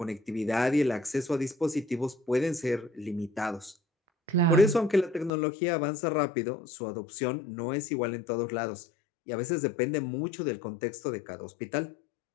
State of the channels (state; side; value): drops out; right; at 5.3 s